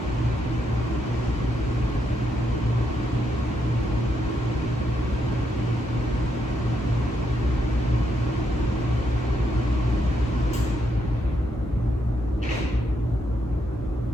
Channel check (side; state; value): both; normal; correlation 0.79